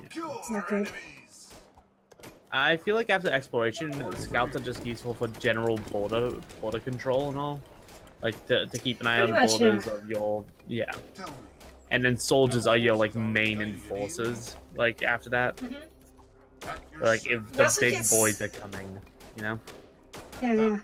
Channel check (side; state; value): both; identical; correlation 1.00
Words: kill not our good. enemies. I feel like after exploration, scouts are just useful for general border control and all. Like to keep an eye on Pretty much, borders of your Tell me. and then soldiers are your like main enforcers. Like after that, At your like if You the also big get boys are coming, you know. Yeah, yeah.